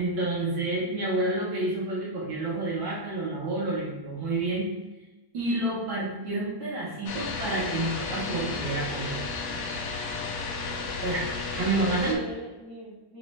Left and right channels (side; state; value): left; late; 1.1 ms